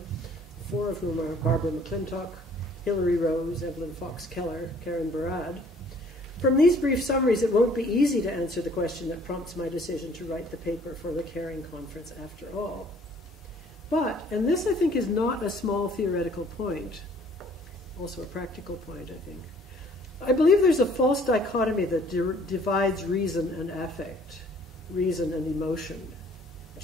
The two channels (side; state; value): both; normal; correlation 0.57